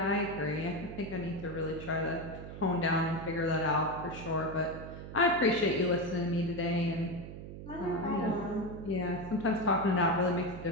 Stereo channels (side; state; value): right; noise; hum, 11 dB below the sound